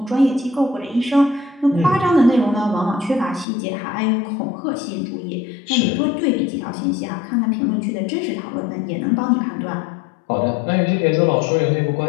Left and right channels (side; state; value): right; drops out; at 3.5 s